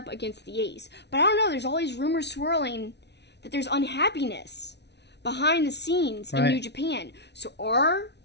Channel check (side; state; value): right; late; 0.50 ms